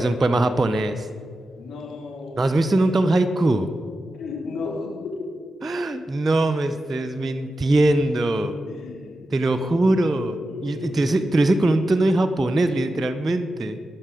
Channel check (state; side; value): normal; both; correlation 0.91